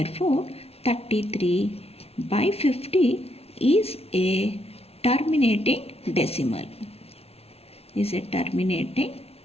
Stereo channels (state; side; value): late; right; 0.30 ms